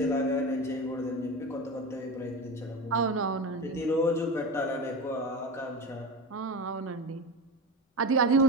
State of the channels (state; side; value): normal; both; correlation 0.24